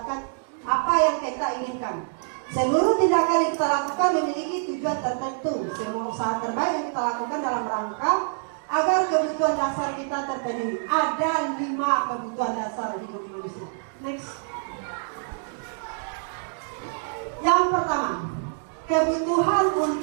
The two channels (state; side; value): silent; left; digital silence